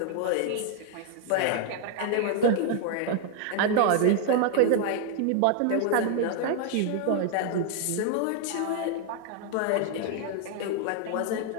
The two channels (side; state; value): both; different; correlation 0.00